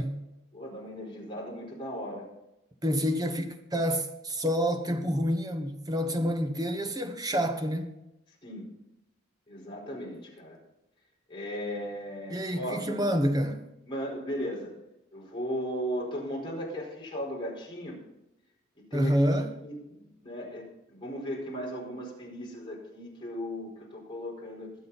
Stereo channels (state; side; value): normal; both; correlation 0.67